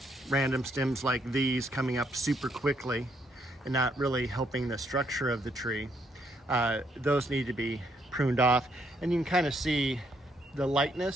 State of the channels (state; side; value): normal; both; correlation 0.73